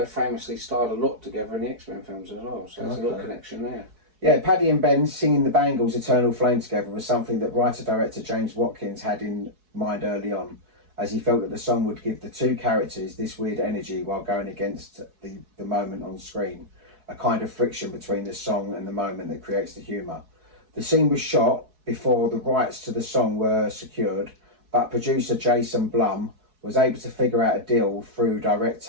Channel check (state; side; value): late; left; 4.7 ms